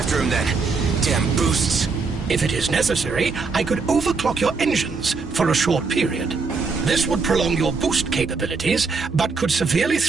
him then. Damn boosts. If it is necessary, I could overclock your engines for a short period. This would prolong your boost capabilities, but could severely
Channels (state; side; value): quieter; left; 4.5 dB